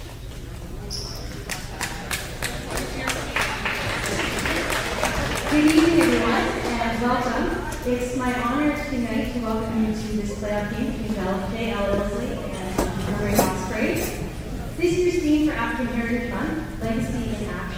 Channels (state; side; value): identical; both; correlation 1.00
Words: Good evening, everyone, and welcome. It's my honor tonight to welcome you to this playoff game between JL Ilsley and Armbrae. This year's theme for African Heritage Month, Legacy in